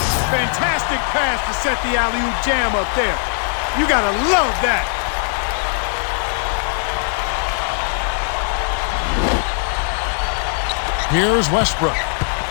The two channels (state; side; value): silent; right; 61 dB below the other